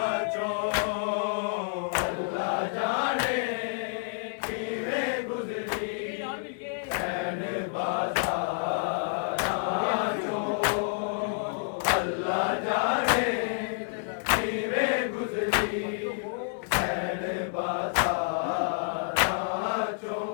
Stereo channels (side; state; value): right; silent; 59 dB below the other